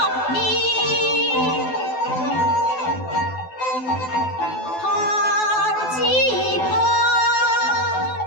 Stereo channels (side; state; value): right; late; 12 ms